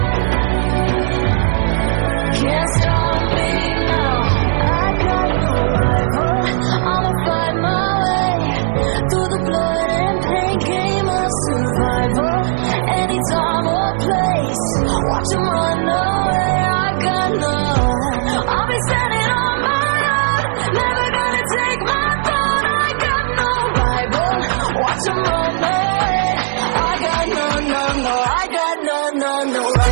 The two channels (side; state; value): left; silent; digital silence